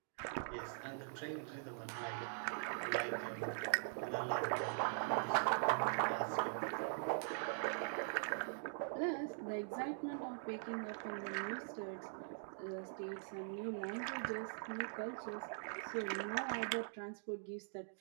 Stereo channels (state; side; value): silent; left; digital silence